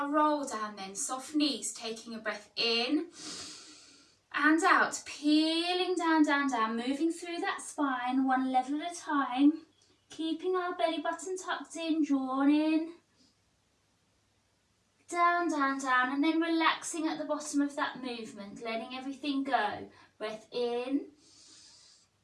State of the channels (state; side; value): identical; both; correlation 1.00